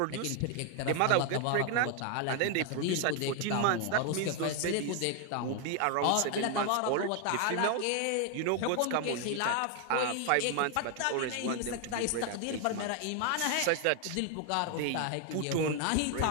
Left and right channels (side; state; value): both; different; correlation 0.00